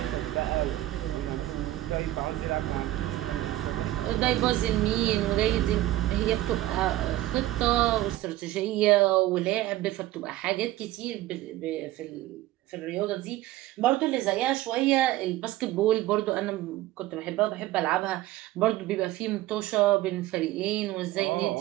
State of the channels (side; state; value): left; quieter; 15.8 dB